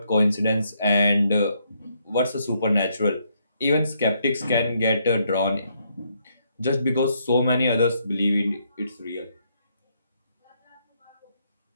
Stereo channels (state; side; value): inverted; both; correlation -0.74